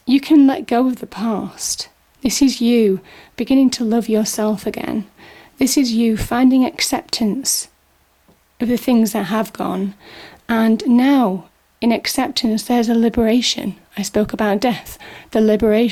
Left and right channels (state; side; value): identical; both; correlation 1.00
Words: can let go of the past. This is you beginning to love yourself again. This is you finding acceptance of the things that have gone. And now, in acceptance, there's a liberation. I spoke about death, the